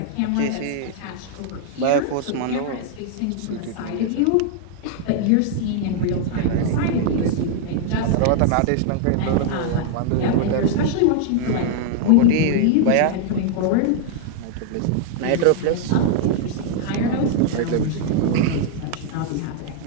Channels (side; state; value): both; different; correlation -0.01